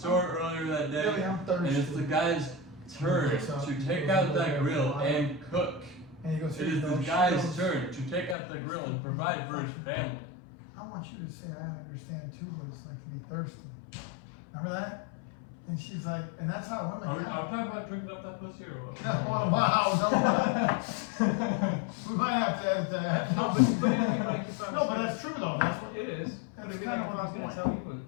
earlier that day, Really, I'm thirsty. and it's the guy's turn to take out that grill and cook. And he goes, It "Here is you the go." She guy's goes, turn to take out the grill and provide for his family. I want you to say I understand too what it's like to be thirsty. Remember that? And she's like, and that's how women. Are we act. talking about drinking up that pussy or what? Well, wow, no. We might have to edit that. No, but like, if I No, but that's true though. That's what. it is. But That's it'd be kinda like if what I I was gonna was tell you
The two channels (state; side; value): drops out; right; at 8.3 s